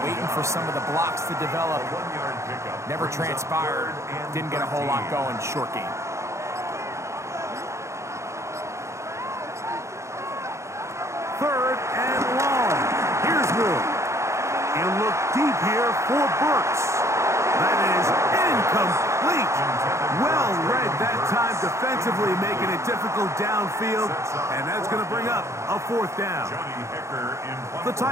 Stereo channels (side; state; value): left; late; 0.14 ms